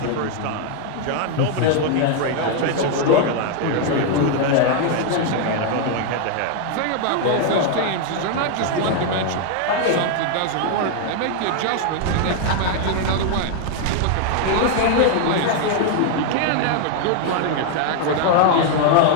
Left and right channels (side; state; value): both; different; correlation 0.00